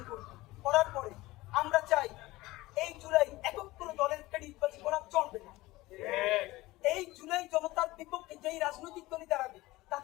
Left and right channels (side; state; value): right; quieter; 19.3 dB